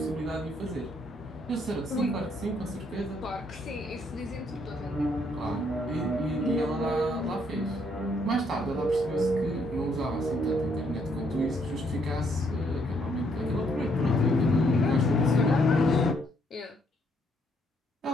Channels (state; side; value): normal; both; correlation 0.70